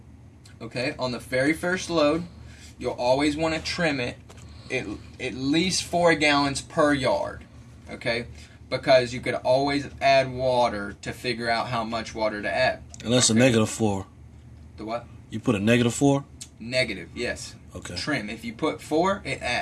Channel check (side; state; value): both; identical; correlation 1.00